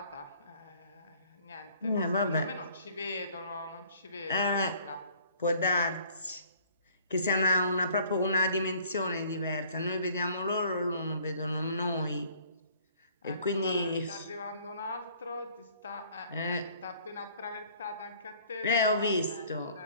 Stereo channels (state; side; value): inverted; both; correlation -0.57